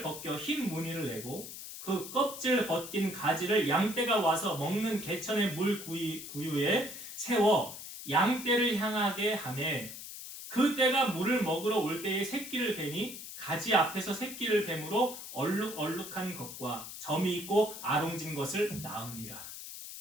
벗겨 흰 무늬를 내고 그 껍질 벗긴 가지를 양떼가 와서 먹는 개천의 물 구유에 세워 양떼를 향하게 하매 그 떼가 물을 먹으러 올 때에 새끼를 베니 가지 앞에서 새끼를 뱀으로 얼룩얼룩한 것과 점이 있고 아롱진 것을 낳으니라.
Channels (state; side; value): noise; left; hiss, 11 dB below the sound